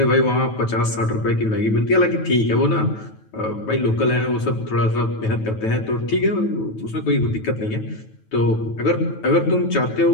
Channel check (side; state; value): right; late; 9.2 ms